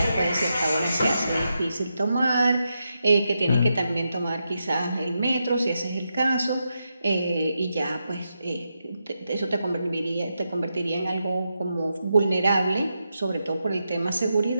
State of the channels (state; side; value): inverted; both; correlation -0.86